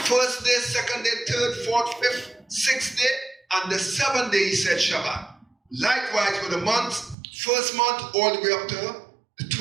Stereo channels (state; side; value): drops out; left; at 7.2 s